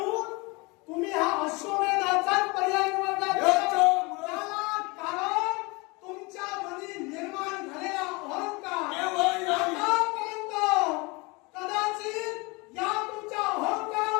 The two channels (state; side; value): quieter; right; 26.6 dB